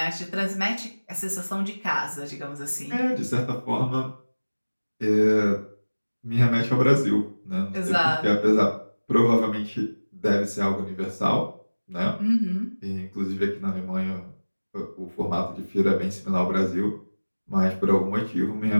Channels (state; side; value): inverted; both; correlation -1.00